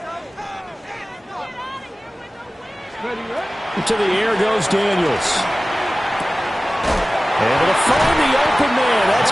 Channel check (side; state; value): both; normal; correlation 0.97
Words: To the air goes Daniels. Able to find the open man. That's